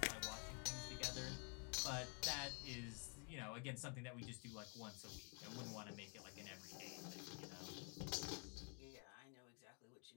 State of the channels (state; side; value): quieter; right; 35.5 dB